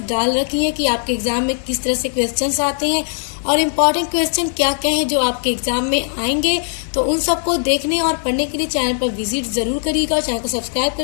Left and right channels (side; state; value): right; silent; 67 dB below the other